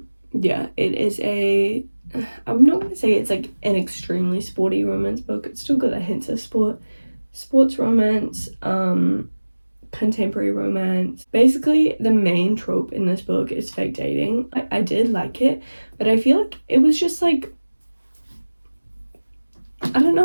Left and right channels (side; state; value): both; inverted; correlation -1.00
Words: Yeah, it is I'm not going to say it's like an extremely sporty romance book. It's still got a hint of sports romance, contemporary romance. Basically, the main trope in this book is fake dating. I did like it, but I feel like it was just like, I don't